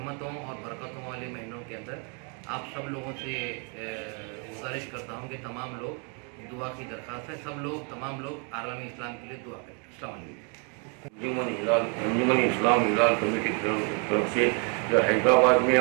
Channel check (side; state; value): left; quieter; 37.0 dB